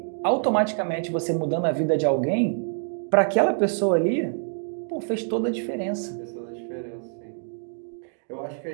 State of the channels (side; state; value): left; silent; 61 dB below the other